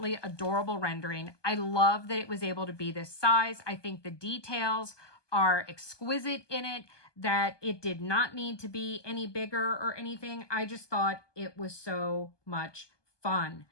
adorable rendering. I love that it was able to be this size. I think the details are exquisite in it, that it did not need to be any bigger or anything. I just thought it was so much fun.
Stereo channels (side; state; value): right; late; 1.2 ms